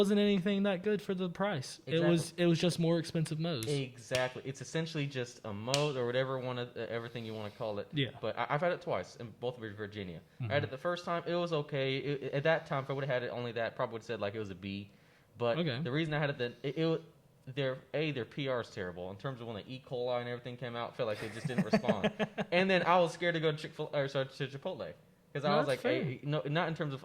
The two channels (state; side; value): identical; both; correlation 1.00